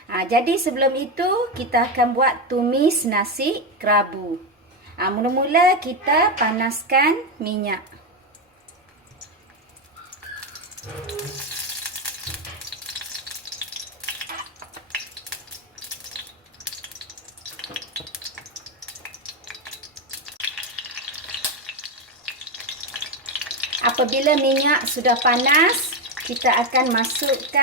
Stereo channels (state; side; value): normal; both; correlation 0.10